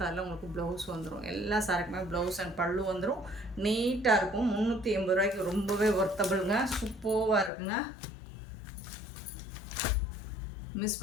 உங்களுக்கு ப்ளவுஸ் வந்துடும். எல்லா சாரிக்குமே ப்ளவுஸ் அண்ட் பல்லு வந்துடும். நீட்டாக இருக்கும். 380 ரூபாய்க்கு ரொம்பவே ஒர்த்தபிளுங்க, சூப்பராக இருக்குங்க. மிஸ்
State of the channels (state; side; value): drops out; right; at 7.5 s